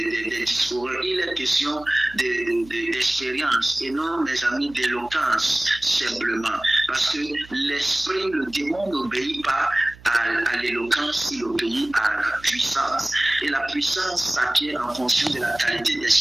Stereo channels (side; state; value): right; noise; hum, 21 dB below the sound